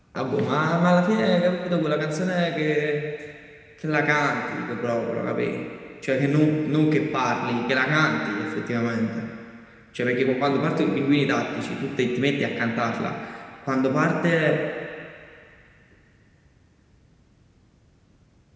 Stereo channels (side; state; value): both; identical; correlation 1.00